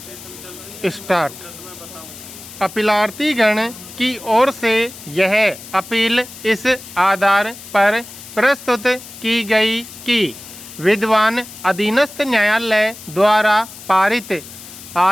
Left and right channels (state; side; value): noise; left; hiss, 16 dB below the sound